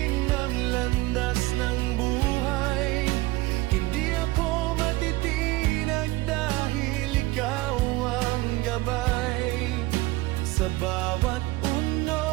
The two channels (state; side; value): quieter; left; 19.8 dB